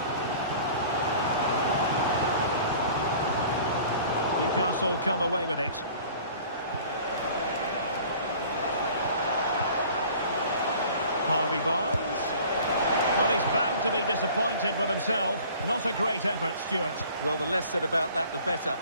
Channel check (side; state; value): both; inverted; correlation -0.48